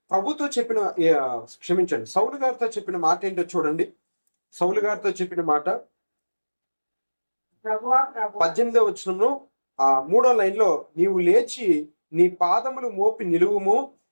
ప్రభుతో చెప్పిన, క్షమించండి, సౌలు గారితో చెప్పిన మాట ఏంటో చూడండి. సౌలు గారితో చెప్పిన మాట 18వ వచనంలో 3వ లైన్లో, నీవు లేచి నీ పాదములు మోపి నిలువుము,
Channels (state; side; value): inverted; both; correlation -1.00